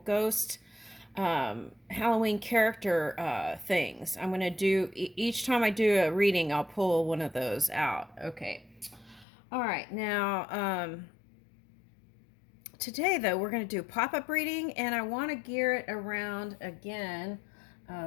Halloween character things. I'm going to do, each time I do a reading, I'll pull one of those out. Okay. All right, now, today though, we're going to do pop-up reading, and I want to gear it around, again,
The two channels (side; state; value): right; drops out; at 9.2 s